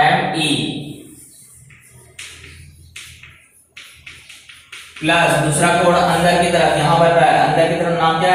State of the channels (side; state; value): both; identical; correlation 1.00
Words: एम ई प्लस दूसरा कोण अंदर की तरफ यहां बन रहा है, अंदर की तरफ नाम क्या